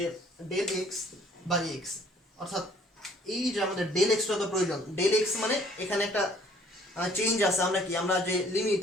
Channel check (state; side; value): normal; both; correlation 0.58